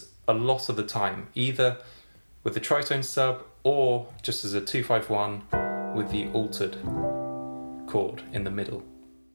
a lot of the time, either with the tritone sub or just as a 2-5-1 with the altered chord in the middle.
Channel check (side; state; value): both; inverted; correlation -1.00